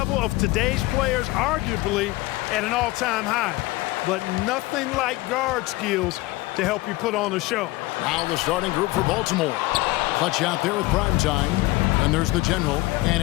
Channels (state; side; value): quieter; right; 19.9 dB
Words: of today's players arguably at an all-time high. But nothing like guard skills to help you put on a show. Now the starting group for Baltimore. Clutch out there with Primetime. And there's the General. And